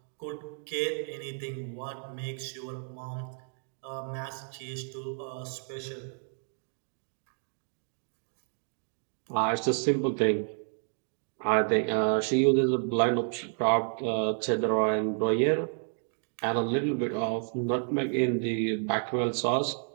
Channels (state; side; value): silent; left; 57 dB below the other